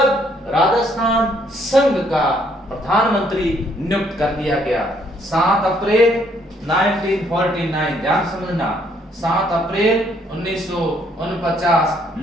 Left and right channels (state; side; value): normal; both; correlation 0.68